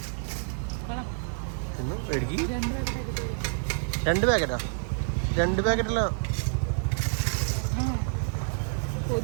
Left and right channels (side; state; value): left; silent; 59 dB below the other